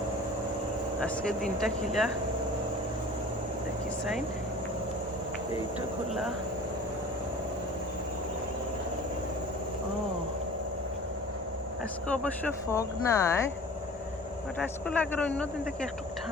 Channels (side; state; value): both; normal; correlation 0.42